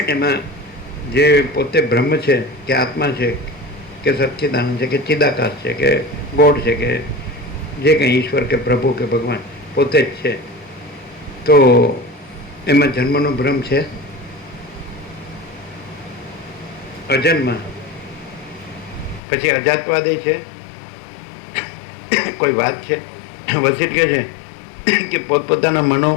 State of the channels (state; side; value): drops out; right; at 19.2 s